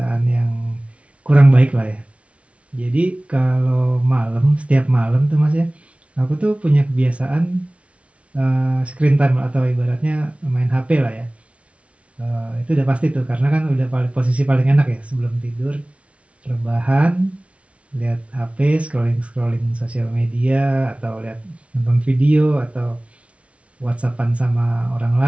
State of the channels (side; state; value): left; late; 0.062 ms